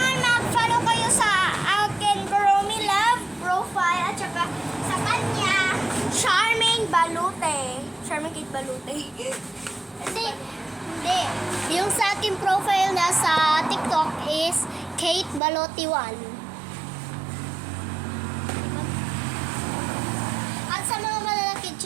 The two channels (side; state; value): left; drops out; at 15.4 s